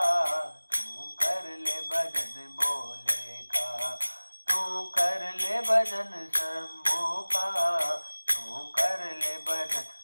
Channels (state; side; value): inverted; both; correlation -1.00